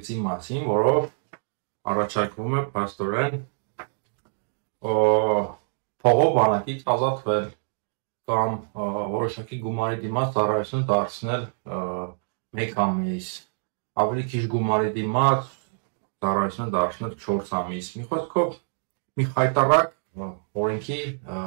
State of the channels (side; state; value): left; silent; digital silence